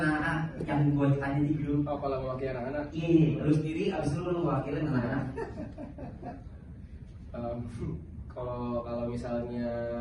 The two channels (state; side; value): identical; both; correlation 1.00